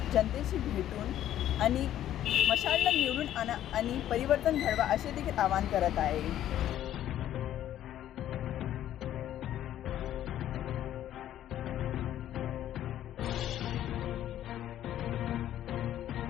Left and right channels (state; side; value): quieter; right; 11.9 dB